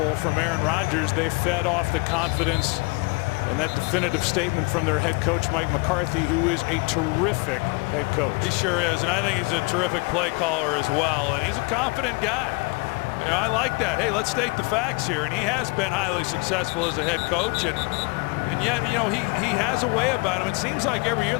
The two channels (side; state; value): right; quieter; 28.4 dB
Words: from Aaron Rodgers, they fed off the confidence and that definitive statement from their head coach Mike McCarthy, who is a terrific head coach. He sure is, and I think he's a terrific play caller as well, and he's a confident guy. I like that. Hey, let's state the facts here, and he has been highly successful as a head coach, and yet he has a way about him. It seems like every year